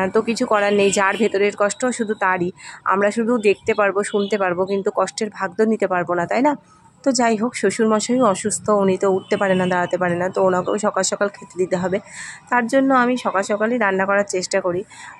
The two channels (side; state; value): both; identical; correlation 1.00